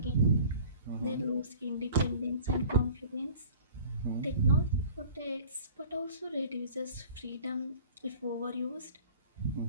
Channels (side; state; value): both; inverted; correlation -0.47